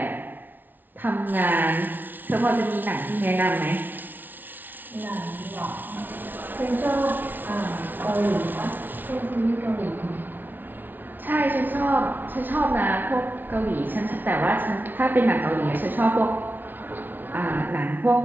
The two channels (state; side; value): late; left; 0.088 ms